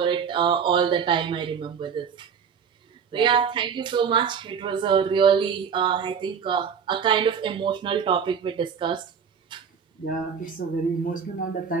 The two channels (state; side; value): quieter; left; 6.9 dB